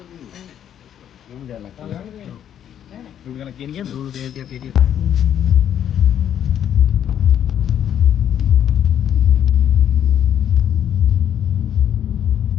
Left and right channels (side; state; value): right; quieter; 9.8 dB